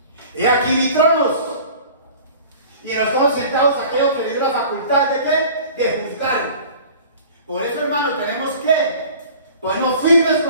He aquí vi tronos, y en los tronos sentados aquellos que le dio la facultad de ¿qué? De juzgar. Por eso, hermano, tenemos que ponernos firmes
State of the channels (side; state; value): both; inverted; correlation -0.45